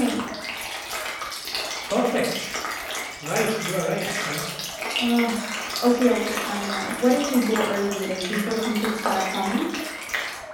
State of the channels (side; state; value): both; identical; correlation 1.00